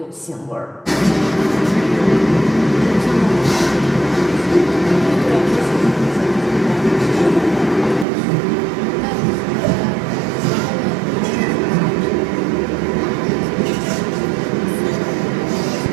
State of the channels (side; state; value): left; drops out; at 8.1 s